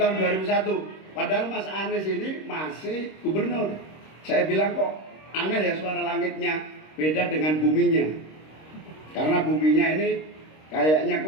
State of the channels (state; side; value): late; right; 26 ms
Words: 2001. Padahal Mas Anies ini masih gubernur. Saya bilang kok aneh ya suara langitnya beda dengan buminya. Karena buminya ini kayaknya